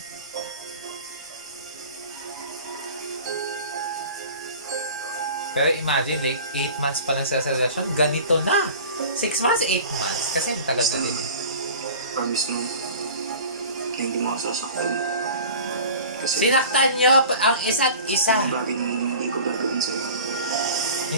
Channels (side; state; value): both; inverted; correlation -0.40